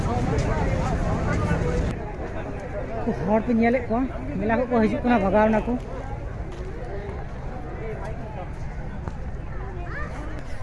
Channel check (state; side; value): identical; both; correlation 1.00